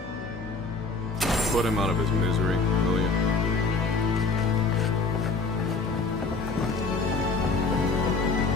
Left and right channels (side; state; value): right; quieter; 4.0 dB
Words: Put him out of his misery, will you?